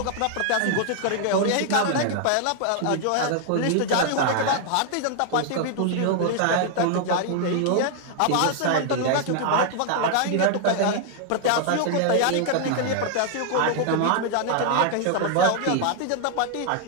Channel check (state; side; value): different; both; correlation 0.00